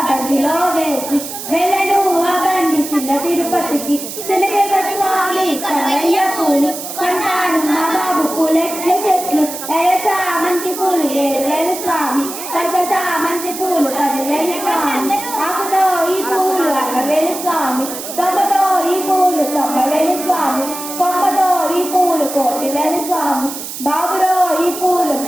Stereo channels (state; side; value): noise; right; hiss, 9 dB below the sound